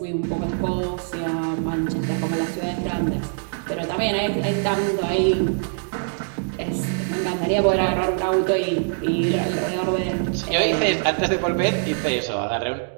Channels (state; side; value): silent; left; digital silence